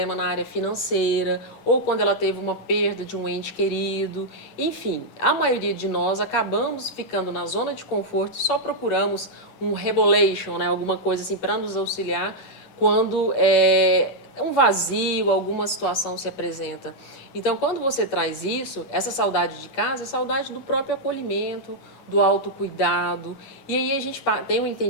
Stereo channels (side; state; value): right; late; 11 ms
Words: na área financeira, ou quando ela teve uma perda de um ente querido. Enfim, a maioria de nós acabamos ficando na zona de conforto e só procuramos um revelation, né, alguma coisa assim para nos auxiliar quando um vazio, alguma situação se apresenta. Então, quando você traz isso, essa saudade de casa é saudade do próprio acolhimento, do autocuidado. E aí a gente tem um